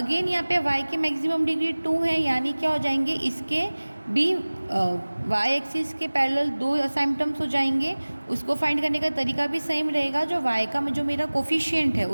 यहाँ पे y की मैक्सिमम डिग्री 2 है, यानी क्या हो जाएंगे, इसके भी y एक्सिस के पैरेलल दो असाइम्पटम्स हो जाएंगे। उसको फाइंड करने का तरीका भी सेम रहेगा, जो y का जो मेरा कोफिशिएंट है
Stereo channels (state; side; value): inverted; both; correlation -1.00